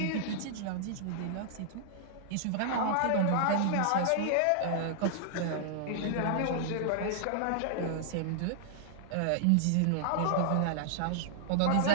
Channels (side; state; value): both; different; correlation -0.01